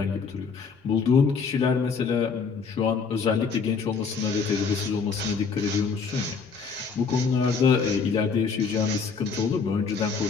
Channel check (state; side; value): quieter; right; 5.3 dB